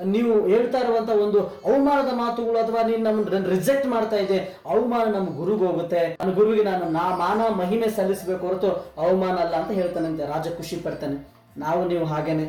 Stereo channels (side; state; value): both; identical; correlation 1.00